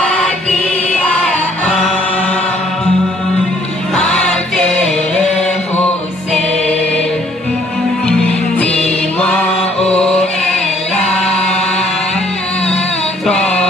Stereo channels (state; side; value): normal; both; correlation 0.63